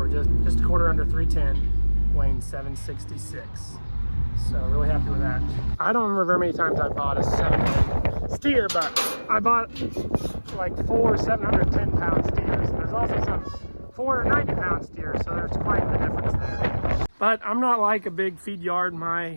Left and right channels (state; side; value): inverted; both; correlation -1.00